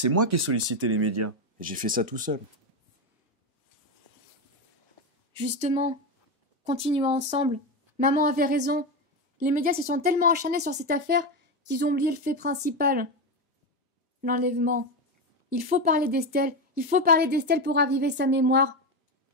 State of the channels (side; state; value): both; normal; correlation 0.13